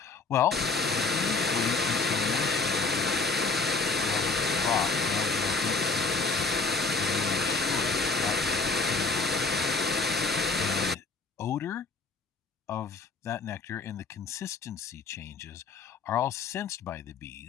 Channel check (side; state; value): right; quieter; 4.0 dB